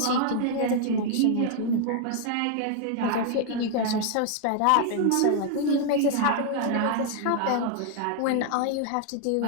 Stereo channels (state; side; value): different; both; correlation 0.00